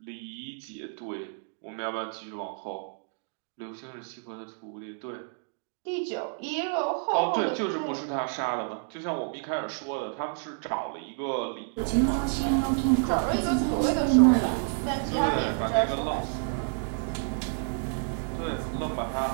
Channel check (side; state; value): left; silent; 58 dB below the other